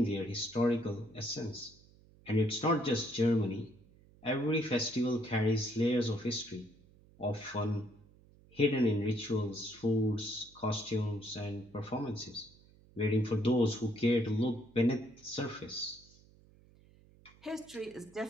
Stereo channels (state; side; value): noise; right; hum, 26 dB below the sound